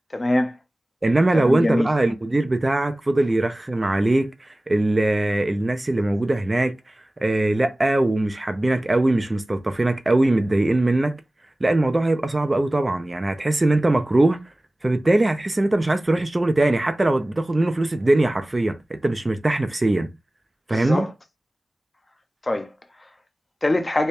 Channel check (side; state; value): both; normal; correlation 0.98